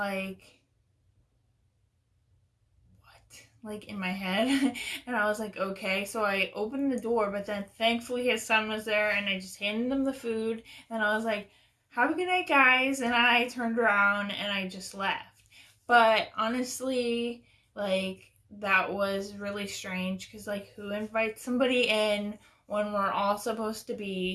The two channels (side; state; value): both; identical; correlation 1.00